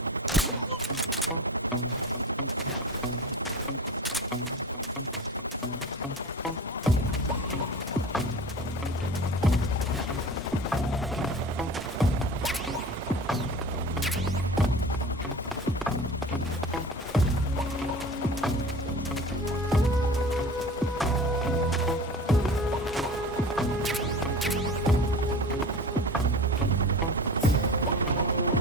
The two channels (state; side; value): normal; both; correlation 0.36